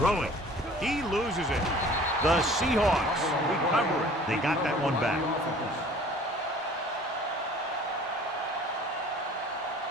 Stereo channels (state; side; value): normal; both; correlation 0.49